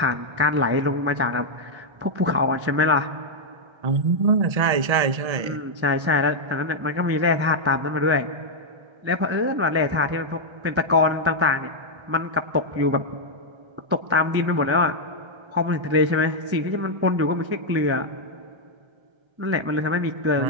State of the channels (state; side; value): late; left; 1.3 ms